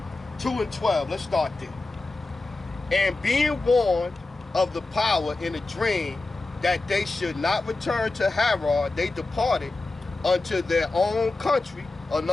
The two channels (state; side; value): quieter; right; 3.3 dB